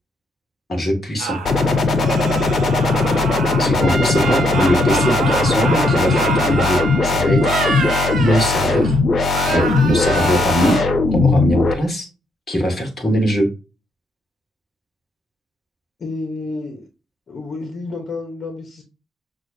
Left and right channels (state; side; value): normal; both; correlation 0.74